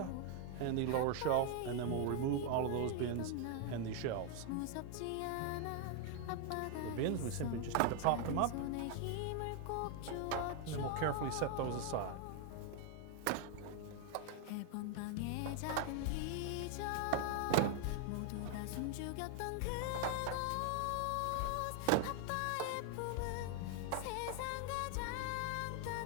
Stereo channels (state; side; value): different; both; correlation 0.00